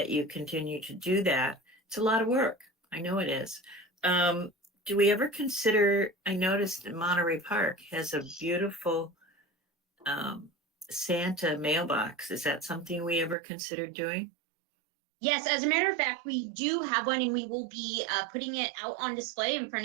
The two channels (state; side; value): drops out; left; at 13.4 s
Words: you continue to do that. It's a lot of work. I know it is. Do we ever consider, I noticed that Monterey Park has a beautiful Santa mailbox. Is that something we ever considered doing? Yes, as a matter of fact, we do have one, and we will be putting it out on display in